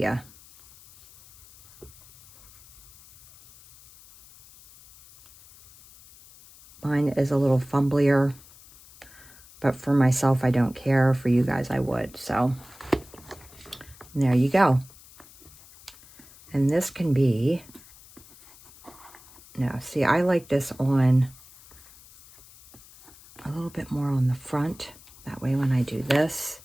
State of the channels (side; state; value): left; noise; hiss, 23 dB below the sound